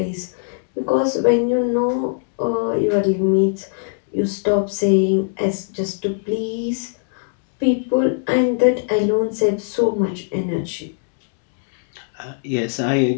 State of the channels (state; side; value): silent; right; digital silence